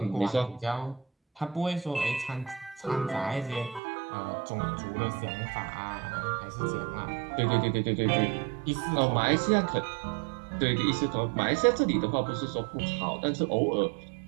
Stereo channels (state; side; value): drops out; left; at 3.8 s